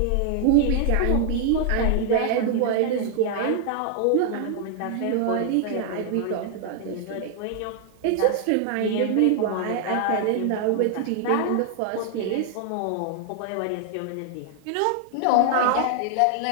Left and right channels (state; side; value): different; both; correlation 0.00